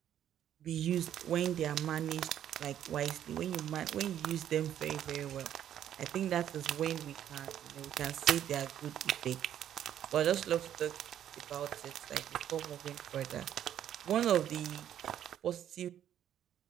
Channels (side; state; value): left; quieter; 10.6 dB